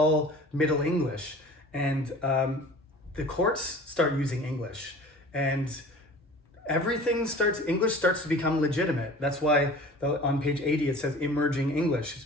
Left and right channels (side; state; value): both; normal; correlation 0.43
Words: Middle English, and the courts start using English, and English starts to become legitimate. That's why on page 80 it says emerging English. It's